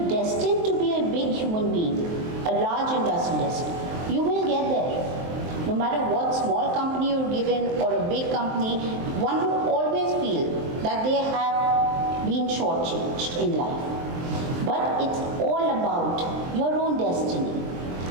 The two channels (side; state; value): left; late; 23 ms